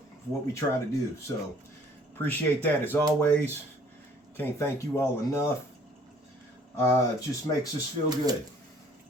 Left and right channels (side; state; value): both; normal; correlation 0.57